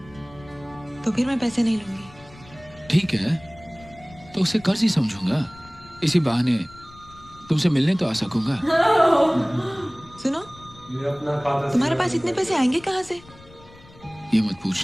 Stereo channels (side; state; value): left; noise; rumble, 23 dB below the sound